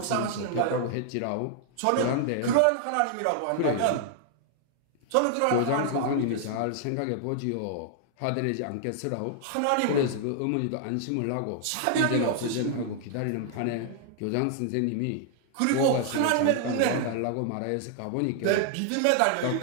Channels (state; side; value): different; both; correlation 0.00